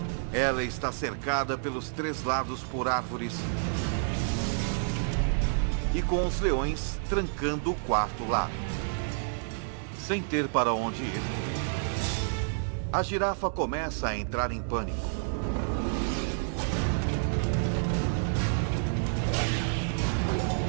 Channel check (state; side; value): silent; left; digital silence